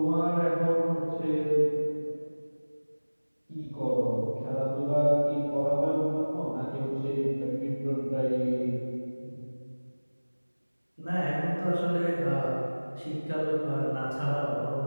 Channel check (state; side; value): inverted; both; correlation -1.00